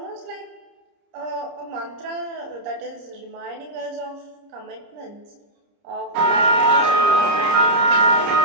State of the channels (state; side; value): late; left; 30 ms